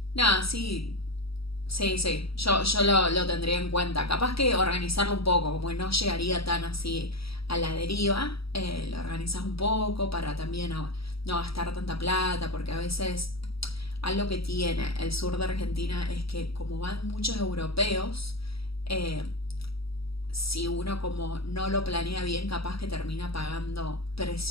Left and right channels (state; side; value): late; right; 0.76 ms